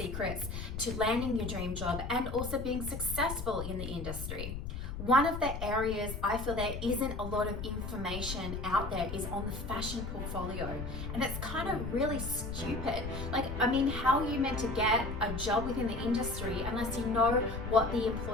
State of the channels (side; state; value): left; noise; rumble, 6 dB below the sound